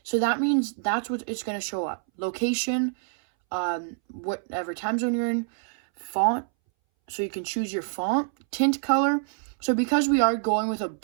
So that means that's what it's going to show up. Location, whatever time zone you're in, font, so you can choose your font, tint color. So because we are going with a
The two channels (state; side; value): silent; left; 61 dB below the other